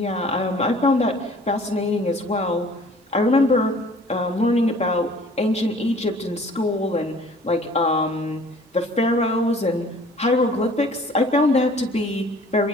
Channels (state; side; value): normal; both; correlation 0.52